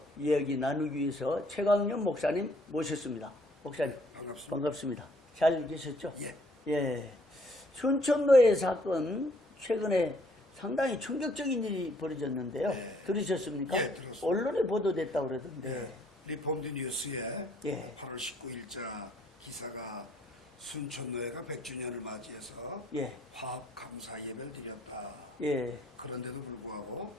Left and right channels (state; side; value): normal; both; correlation 0.64